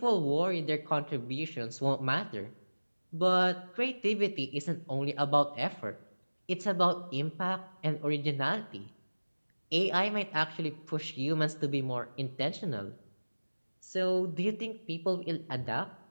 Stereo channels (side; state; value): both; inverted; correlation -1.00